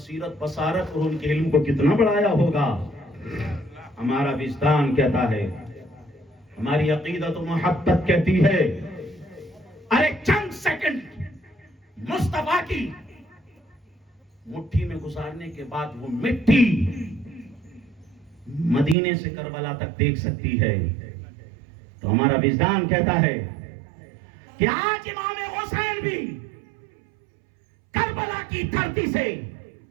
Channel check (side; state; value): left; drops out; at 18.9 s